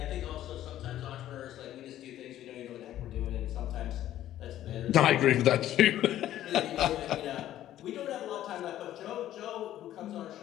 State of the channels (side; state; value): right; quieter; 12.7 dB